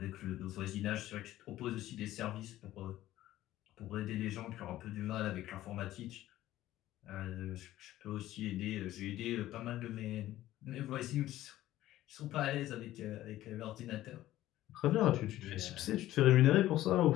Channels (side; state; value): right; quieter; 14.6 dB